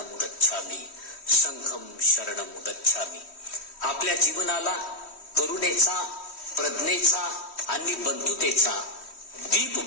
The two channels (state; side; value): late; right; 3.1 ms